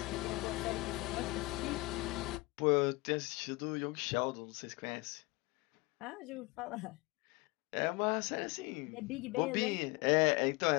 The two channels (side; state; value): right; quieter; 23.2 dB